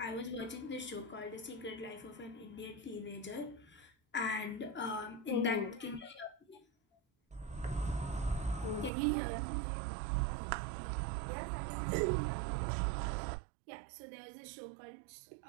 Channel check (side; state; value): left; drops out; at 8.9 s